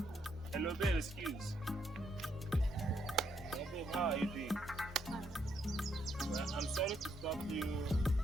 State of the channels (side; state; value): both; normal; correlation 0.75